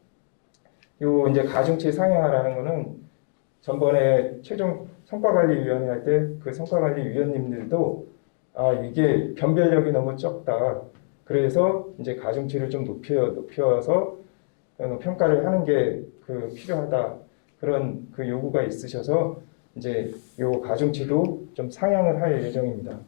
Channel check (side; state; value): right; silent; digital silence